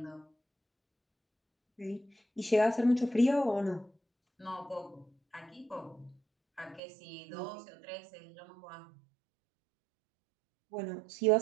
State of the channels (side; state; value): left; drops out; at 6.8 s